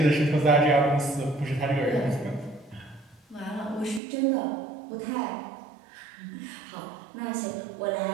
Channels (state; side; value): drops out; left; at 4.0 s